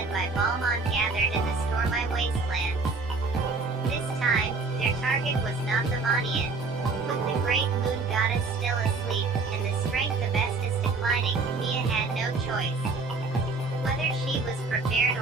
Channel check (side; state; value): left; quieter; 4.1 dB